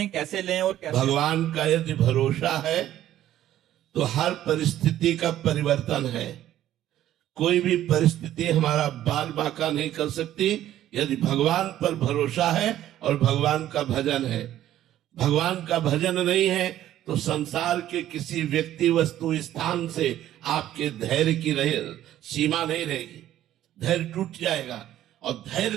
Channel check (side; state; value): left; quieter; 12.7 dB